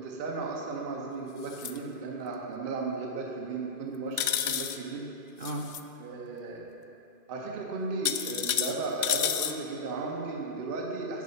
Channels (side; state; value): left; late; 2.5 ms